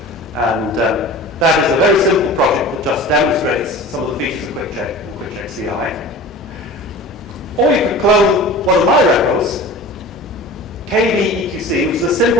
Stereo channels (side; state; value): both; normal; correlation 0.38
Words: and that is a very simple project that just demonstrates some of the features of QuickCheck and QuickCheck CI. Or you could clone one of my repos, KVEQC, which is a